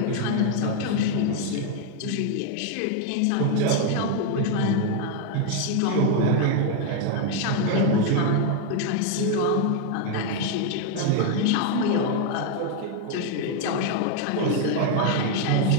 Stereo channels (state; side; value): different; both; correlation 0.01